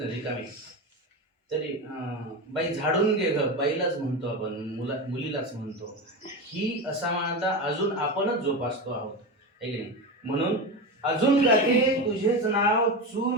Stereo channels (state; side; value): normal; both; correlation 0.20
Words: रिकामी तरी बाई झाडून घे ग बाईलाच म्हणतो आपण मुलीलाच म्हणतो. ही असा म्हणता अजून आपणच जोपासतो आहोत है की नाही. म्हणून अजून गाते तुझेच नाव